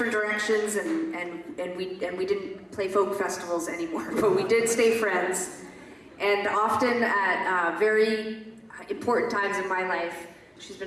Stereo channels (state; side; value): identical; both; correlation 1.00